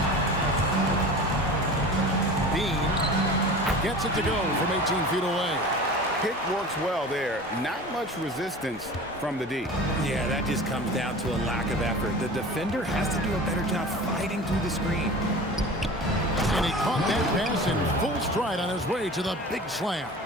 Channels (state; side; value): normal; both; correlation 0.37